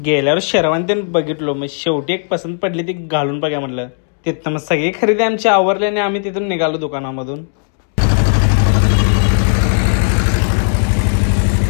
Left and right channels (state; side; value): silent; right; digital silence